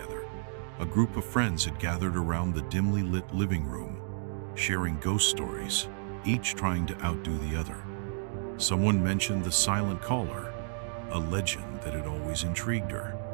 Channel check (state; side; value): silent; left; digital silence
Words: A group of friends had gathered around the dimly lit living room, sharing ghost stories, each trying to outdo the other. Someone mentioned the silent caller, a legend that had always intrigued her.